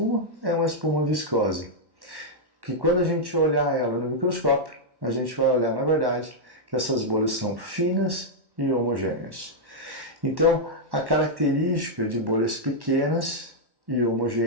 é uma espuma viscosa, que quando a gente olhar ela no microscópio, a gente vai olhar, na verdade, que essas bolhas são finas e homogêneas. Então, a característica de bolhas pequenas e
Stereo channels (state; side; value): late; left; 1.1 ms